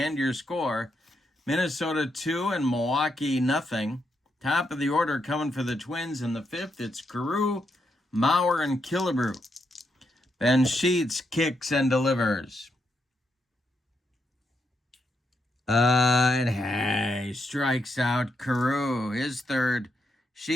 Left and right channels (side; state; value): both; normal; correlation 0.81